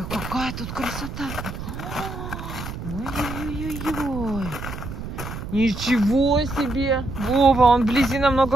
какая тут красота. Ой-ой-ой-ой. Ничего себе. Вова, он вблизи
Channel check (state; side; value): noise; right; rumble, 8 dB below the sound